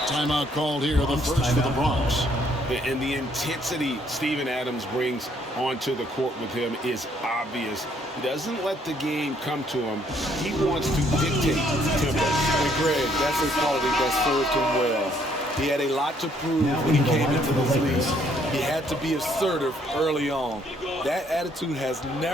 Timeout called here, the first for the Bronx. And the intensity Steven Adams brings onto the court with him is obvious. He doesn't let the game come to him. He wants to dictate tempo. And Greg, that's a quality that served him well. He had a lot to prove when he came into this league. He had to be assertive early on. That attitude has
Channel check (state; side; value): normal; both; correlation 0.67